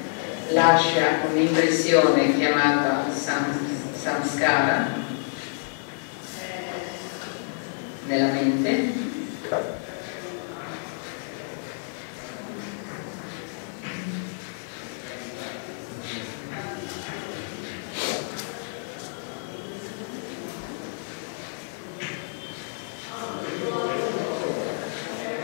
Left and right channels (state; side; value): silent; right; 60 dB below the other